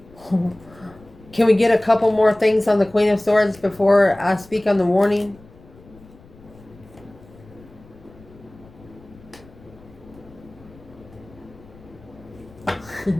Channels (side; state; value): left; noise; rumble, 24 dB below the sound